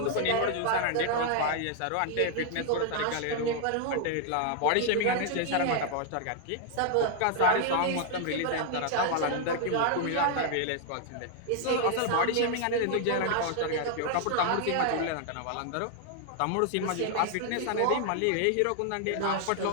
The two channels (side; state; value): both; different; correlation 0.00